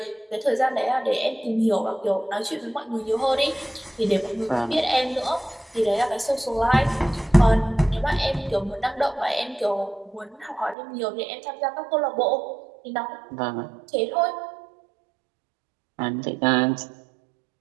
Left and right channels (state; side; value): drops out; left; at 10.8 s